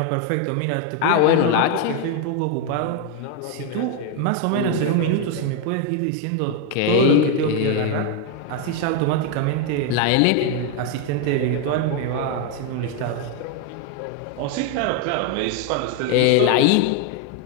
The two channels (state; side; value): different; both; correlation 0.01